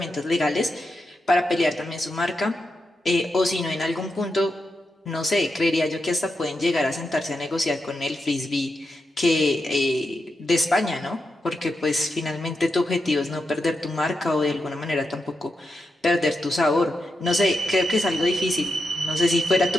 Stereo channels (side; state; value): both; normal; correlation 0.86